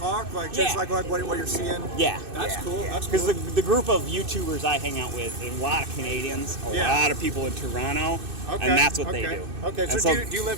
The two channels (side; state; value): left; late; 2.6 ms